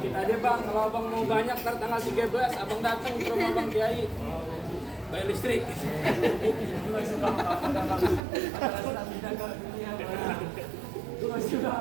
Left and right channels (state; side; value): drops out; left; at 8.2 s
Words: aja Bang, kalau Abang mau banyak ntar tanggal 13 Abang datang ke rumah Bang Kiai bayar listrik. Sudah